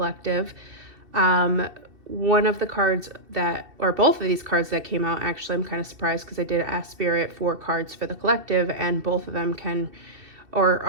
One of the cards or both of these cards that came out, actually, I'm kind of surprised because I did ask Spirit for cards for the collective, and both of them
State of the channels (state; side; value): late; left; 2.8 ms